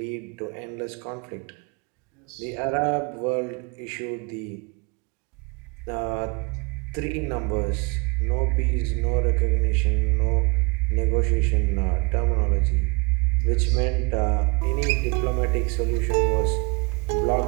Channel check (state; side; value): quieter; left; 29.8 dB